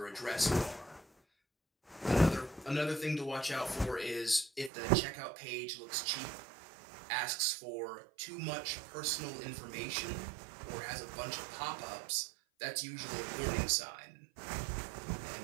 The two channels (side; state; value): left; drops out; at 4.7 s